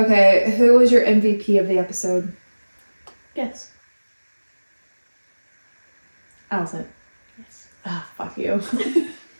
who was your MVP of the episode? Yes. Allison. Yes. Ah, fuck you.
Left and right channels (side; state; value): both; inverted; correlation -1.00